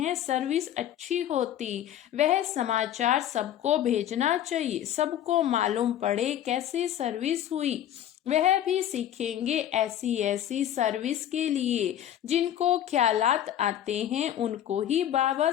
सर्विस अच्छी होती, वह समाचार सबको भेजना चाहिए, सबको मालूम पड़े कैसे सर्विस हुई। वह भी सीखेंगे ऐसी ऐसी सर्विस के लिए। जिनको ख्यालात आते हैं उनको ही बाबा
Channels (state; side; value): quieter; right; 11.1 dB